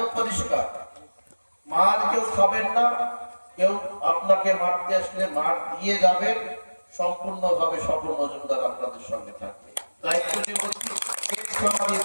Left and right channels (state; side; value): inverted; both; correlation -1.00